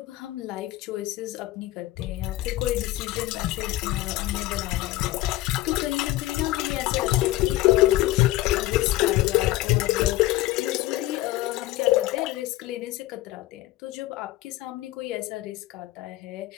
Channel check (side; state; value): right; quieter; 16.9 dB